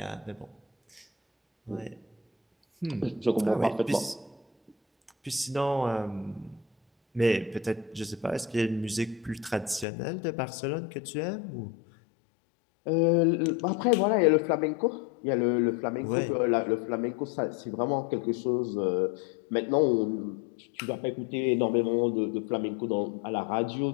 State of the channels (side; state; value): right; drops out; at 9.9 s